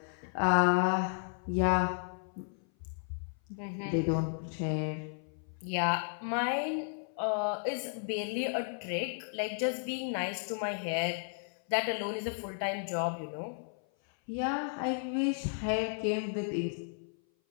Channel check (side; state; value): right; silent; 55 dB below the other